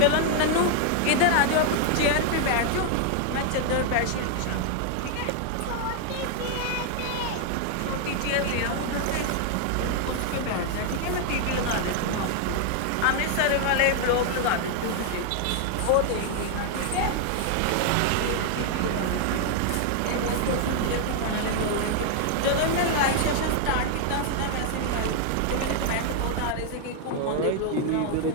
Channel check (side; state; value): both; different; correlation 0.00